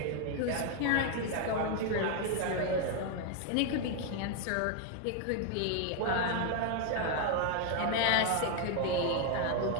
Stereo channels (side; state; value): both; different; correlation 0.00